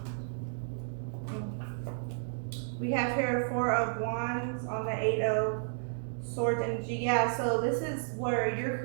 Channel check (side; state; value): left; silent; digital silence